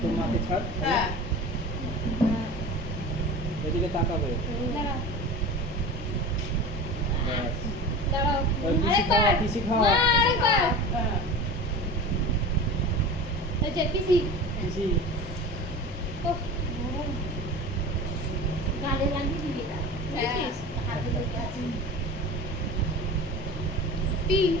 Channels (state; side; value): normal; both; correlation 0.33